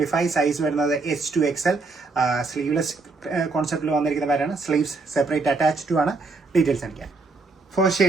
സൈസ് വരുന്നത് S2XL. സ്ലീവ്ലെസ് കോൺസെപ്റ്റിൽ വന്നിരിക്കുന്ന പാറ്റേൺ. സ്ലീവ്സ് സെപ്പറേറ്റ് അറ്റാച്ച്ഡ് ആണ്. ഡീറ്റെയിൽസ് കാണിക്കാം. ഫസ്റ്റ്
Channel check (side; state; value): left; quieter; 3.8 dB